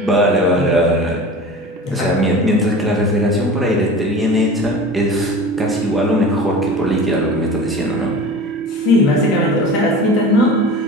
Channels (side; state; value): both; normal; correlation 0.36